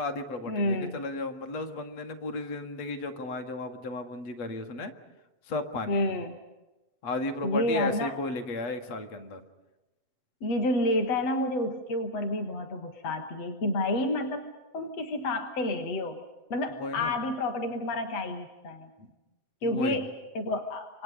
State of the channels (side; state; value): right; late; 7.7 ms